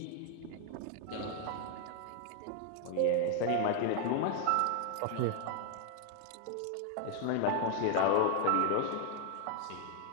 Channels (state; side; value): different; both; correlation 0.00